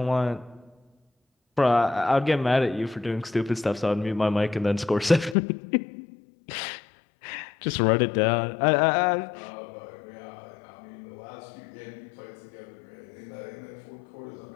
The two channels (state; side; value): drops out; right; at 5.4 s